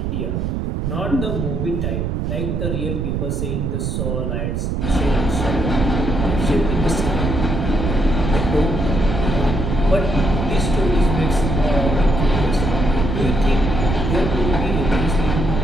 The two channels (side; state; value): right; noise; rumble, 1 dB below the sound